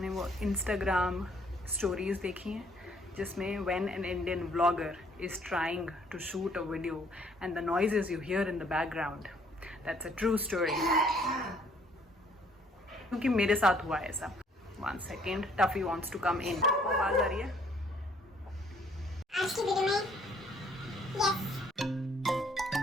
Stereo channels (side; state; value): both; normal; correlation 0.63